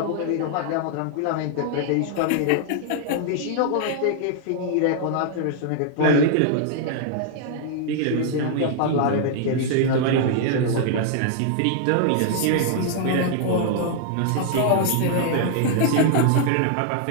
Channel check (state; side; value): different; both; correlation -0.01